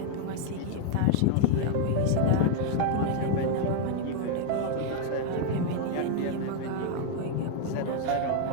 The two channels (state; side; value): different; both; correlation 0.00